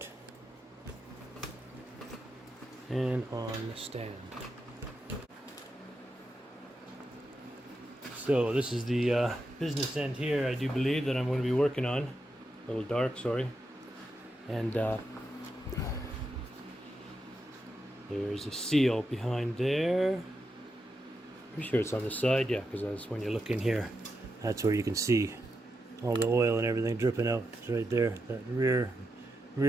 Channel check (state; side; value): normal; both; correlation 0.86